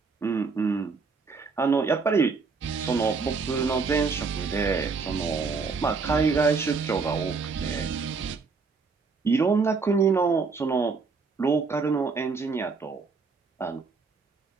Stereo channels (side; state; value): left; quieter; 4.7 dB